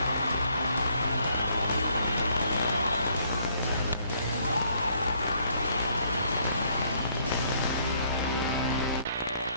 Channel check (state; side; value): inverted; both; correlation -0.66